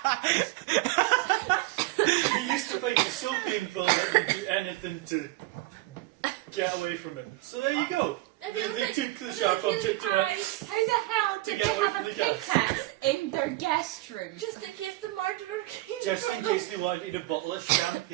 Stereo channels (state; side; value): quieter; left; 19.4 dB